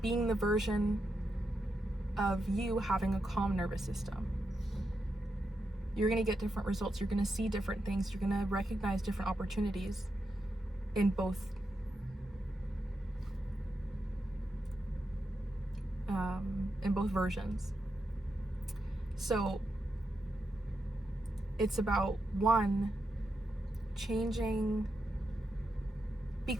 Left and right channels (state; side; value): normal; both; correlation 0.85